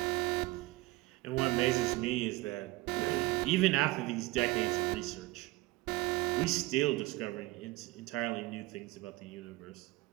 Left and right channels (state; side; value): quieter; left; 19.3 dB